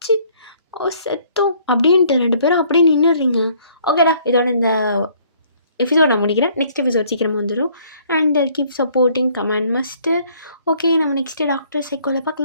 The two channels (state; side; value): inverted; both; correlation -0.61